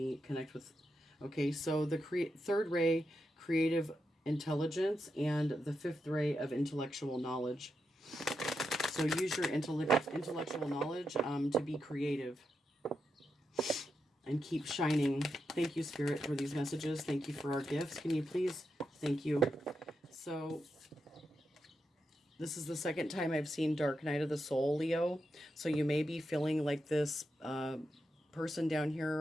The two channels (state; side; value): normal; both; correlation 0.86